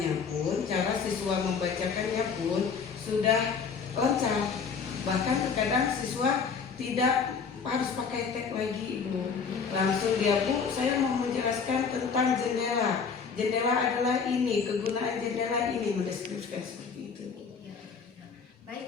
pun, cara siswa membacakannya pun sudah lancar. Bahkan terkadang siswa tidak harus pakai tag lagi Ibu, langsung dia, Bu saya mau menjelaskan tentang jendela. Jendela adalah ini, kegunaan jendela ini, mendeskripsikan seperti itu.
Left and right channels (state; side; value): quieter; right; 5.8 dB